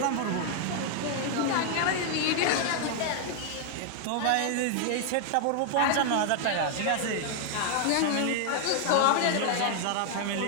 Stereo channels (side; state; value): both; different; correlation 0.00